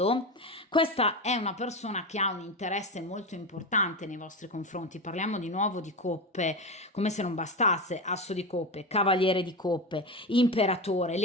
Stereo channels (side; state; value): both; normal; correlation 0.20